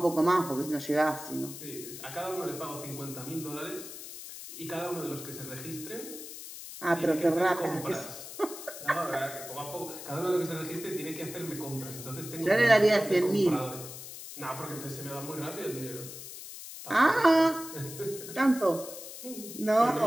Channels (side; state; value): left; noise; hiss, 11 dB below the sound